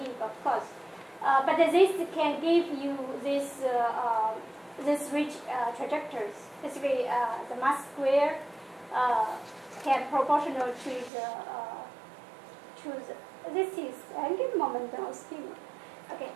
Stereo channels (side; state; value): left; drops out; at 11.1 s